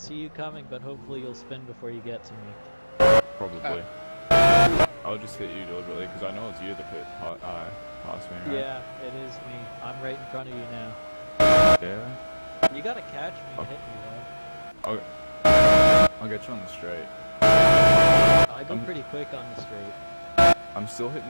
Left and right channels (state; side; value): inverted; both; correlation -1.00